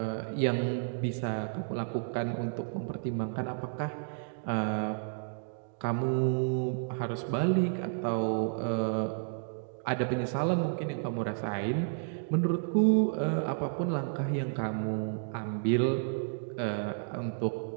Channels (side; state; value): left; silent; digital silence